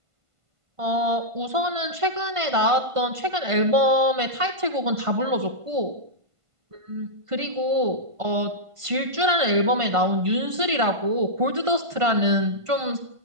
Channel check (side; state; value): left; late; 1.5 ms